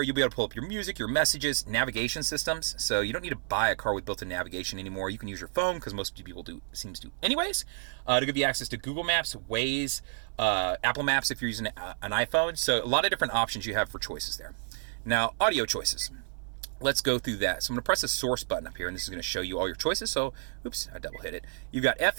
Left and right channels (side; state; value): left; silent; 58 dB below the other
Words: you'll be able to pull up your music, your messages, navigation systems. So you don't need to buy a car with built-in navigation anymore. You can use your phone, because most people seems to anyways, to give you access to Google Maps, Waze, Apple Maps if you're using an iPhone. So a lot of different options you have for choices there. Now, audio choices. Let's go through that. So I'm going to press the source button up here, and this is going to show you all your choices. So, oops, I double hit it. You've got